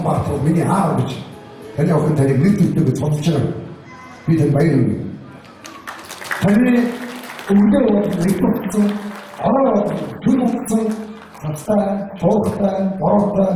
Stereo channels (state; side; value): identical; both; correlation 1.00